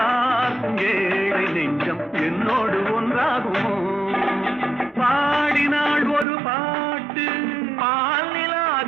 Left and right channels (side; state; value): left; drops out; at 6.2 s